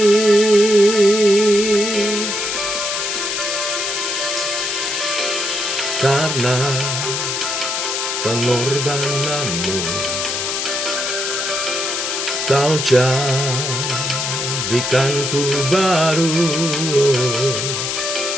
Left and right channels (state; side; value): noise; left; hiss, 2 dB below the sound